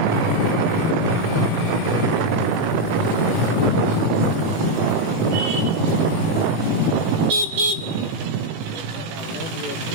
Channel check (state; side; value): late; left; 18 ms